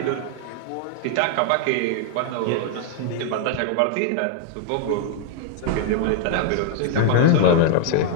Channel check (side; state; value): both; different; correlation 0.00